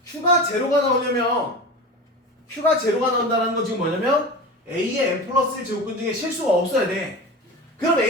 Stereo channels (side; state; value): both; normal; correlation 0.29